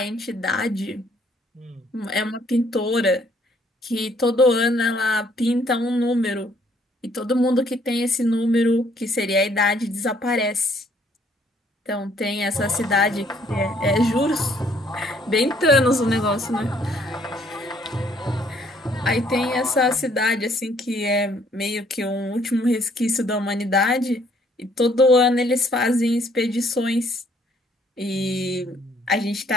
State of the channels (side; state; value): both; normal; correlation 0.64